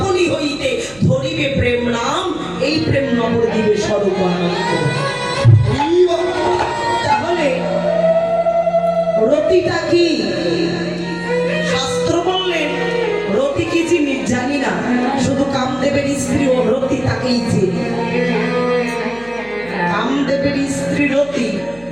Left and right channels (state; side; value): noise; right; hum, 23 dB below the sound